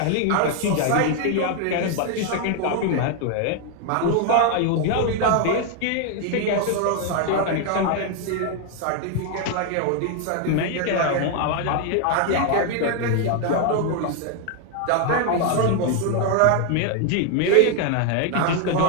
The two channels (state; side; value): different; both; correlation 0.01